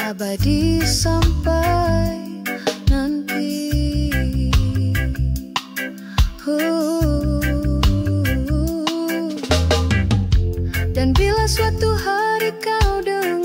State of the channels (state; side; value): identical; both; correlation 1.00